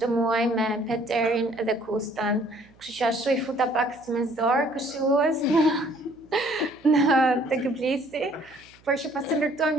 muaj me Peterin dhe Kustan. Kështu që ashtu I futa pak si me zor këshillues në tek Blissi. Por që pas të ndërtuam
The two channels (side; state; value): right; noise; hum, 29 dB below the sound